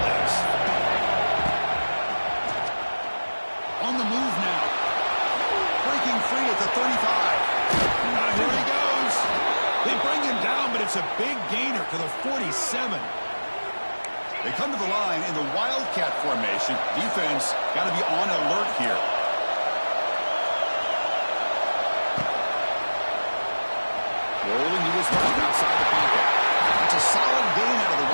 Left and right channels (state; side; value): inverted; both; correlation -1.00